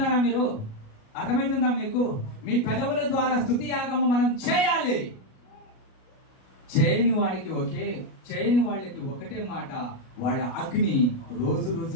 మీరు? అర్థమవుతుందా మీకు? మీ పెదవుల ద్వారా స్తుతి యాగము మనం చేయాలి. చేయని వాళ్ళకి ఒకటే మాట, వాళ్ళ అగ్ని రోజు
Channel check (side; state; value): right; late; 37 ms